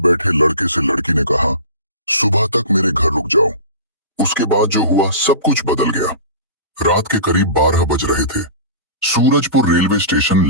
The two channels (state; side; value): inverted; both; correlation -0.35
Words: लड़के से लड़की ने कहा, सुबह तक मेरे घर रुक जाओ। उसके बाद जो हुआ सब कुछ बदल गया। रात के करीब 12 बज रहे थे। सूरजपुर रेलवे स्टेशन